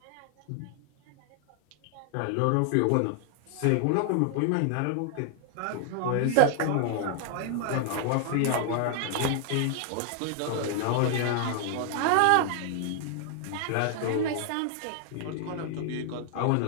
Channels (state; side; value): different; both; correlation 0.00